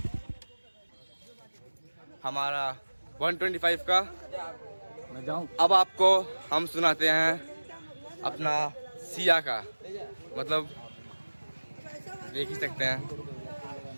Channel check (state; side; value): inverted; both; correlation -1.00